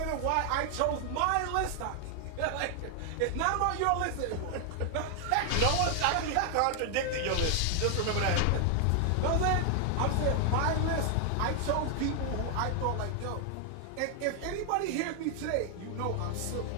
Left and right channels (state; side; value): different; both; correlation 0.00